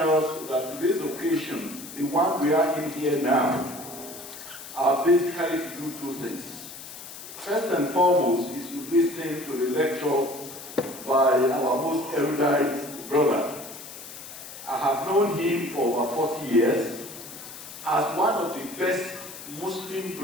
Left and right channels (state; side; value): noise; left; hiss, 13 dB below the sound